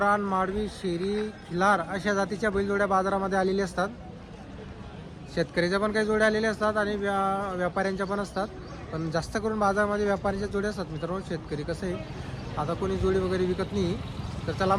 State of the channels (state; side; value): identical; both; correlation 1.00